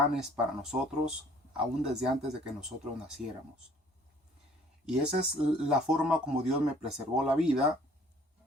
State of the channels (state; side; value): normal; both; correlation 0.56